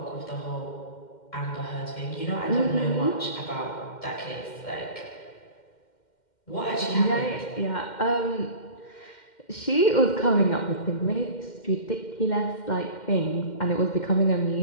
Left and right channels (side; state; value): right; late; 2.1 ms